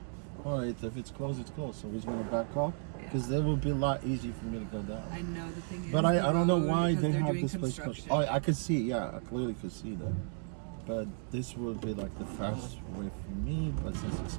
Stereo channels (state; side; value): silent; left; 55 dB below the other